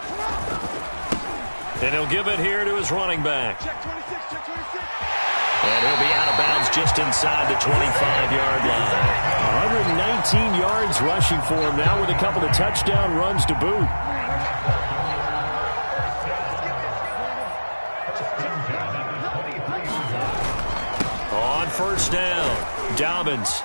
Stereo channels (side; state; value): both; inverted; correlation -1.00